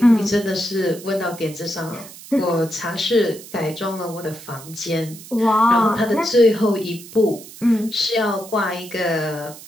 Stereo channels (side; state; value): right; noise; hiss, 17 dB below the sound